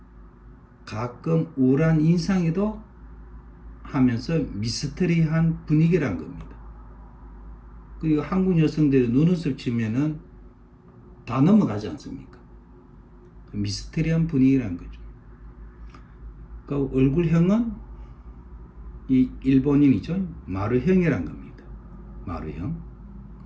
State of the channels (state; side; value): identical; both; correlation 1.00